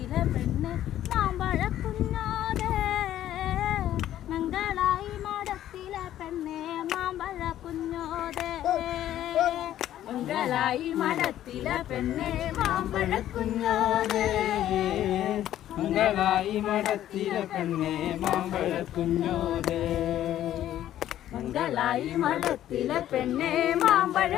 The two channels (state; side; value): quieter; right; 12.3 dB